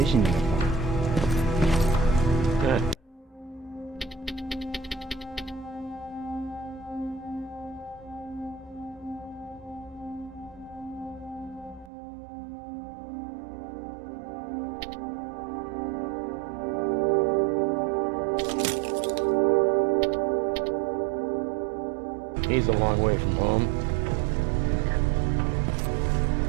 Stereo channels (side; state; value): left; drops out; at 11.9 s